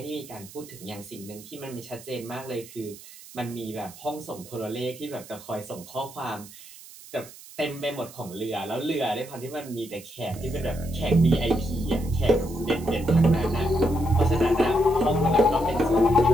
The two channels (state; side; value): noise; right; hiss, 18 dB below the sound